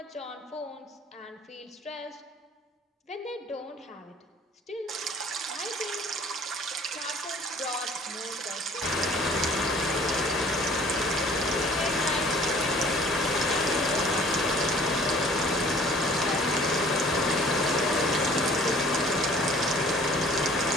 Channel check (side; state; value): both; normal; correlation 0.52